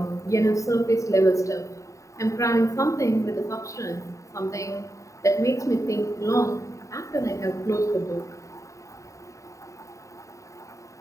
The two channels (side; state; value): right; late; 0.15 ms